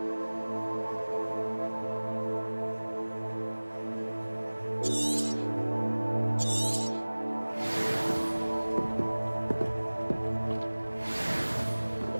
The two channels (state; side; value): inverted; both; correlation -1.00